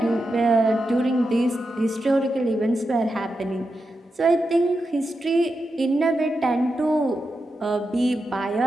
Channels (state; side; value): normal; both; correlation 0.88